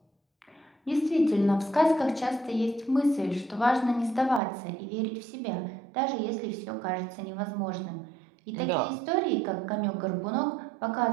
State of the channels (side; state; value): left; drops out; at 4.4 s